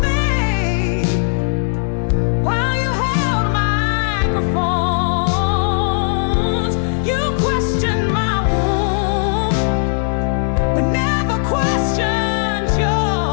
faith while you held microphones. You questioned my womb, but never questioned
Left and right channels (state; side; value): silent; right; digital silence